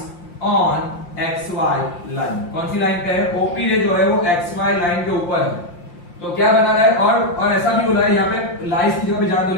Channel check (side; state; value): right; late; 5.7 ms